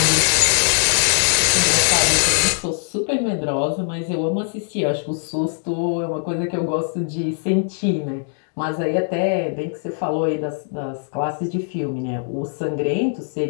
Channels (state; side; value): silent; right; digital silence